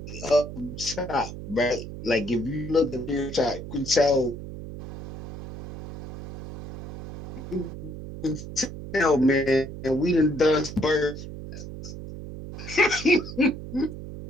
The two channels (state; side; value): noise; right; hum, 9 dB below the sound